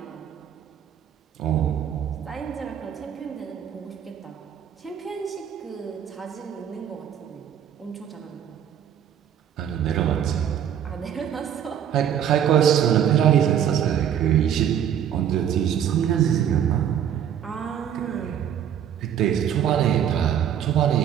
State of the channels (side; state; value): left; quieter; 9.4 dB